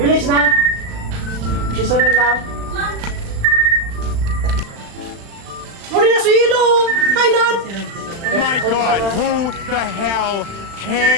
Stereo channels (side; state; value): left; late; 36 ms